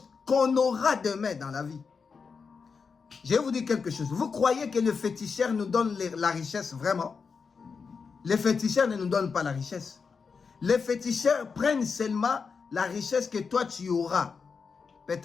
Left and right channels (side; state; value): right; quieter; 5.4 dB